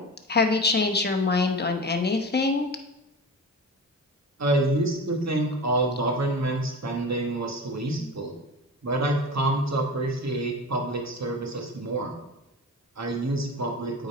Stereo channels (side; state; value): both; normal; correlation 0.31